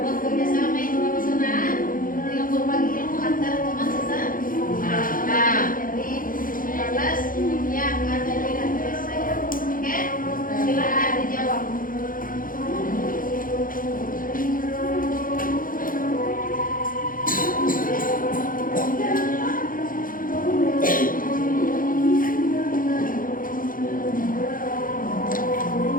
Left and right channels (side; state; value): right; late; 0.40 ms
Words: kerjasama itu lebih senang dengan berbagi ilmu antara teman sesama. Jadi 15 yang ada di dalam saya. Oke, silakan dijawab.